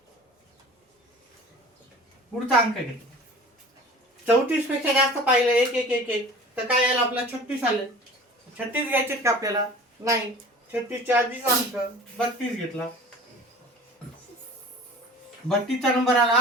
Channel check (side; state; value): both; normal; correlation 0.42